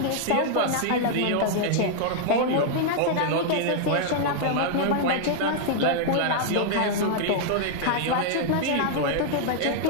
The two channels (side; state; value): both; different; correlation -0.01